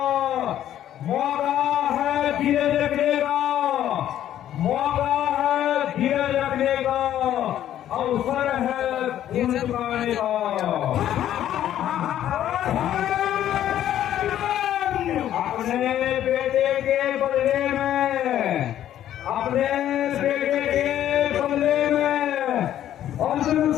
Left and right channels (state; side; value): quieter; right; 11.6 dB